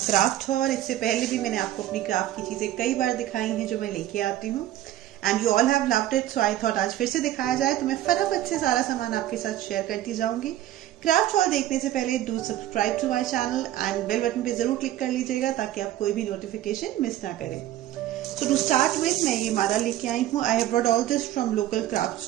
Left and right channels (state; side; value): quieter; left; 13.4 dB